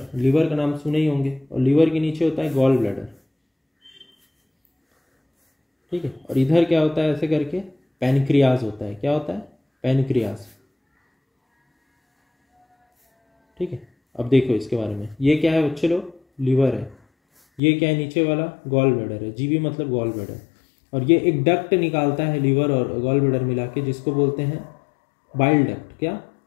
लिवर का नाम सुने ही होंगे, और लिवर के नीचे होता है गॉल ब्लैडर। ठीक है, और इधर क्या होता है? ऐसे करके पैनक्रियास होता है। क्या होता है? पैनक्रियास। ठीक है, अब देखो इसके बारे में, ये क्या है बच्चे लोग? लिवर है। ये क्या है? नीचे वाला गॉल ब्लैडर है, जीबी मतलब गॉल ब्लैडर। और ये एक डक्ट निकालता है लिवर और गॉल ब्लैडर मिला के, जिसको बोलते हैं बाइल डक्ट। क्या?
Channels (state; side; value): drops out; right; at 17.6 s